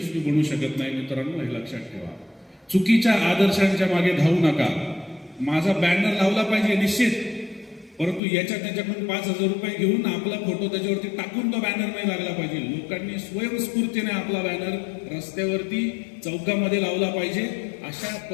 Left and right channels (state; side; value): drops out; right; at 8.2 s